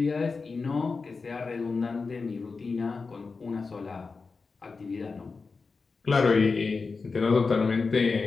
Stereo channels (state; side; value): quieter; right; 4.4 dB